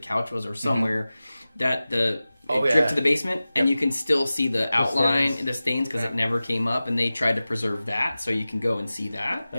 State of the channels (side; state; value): both; inverted; correlation -0.96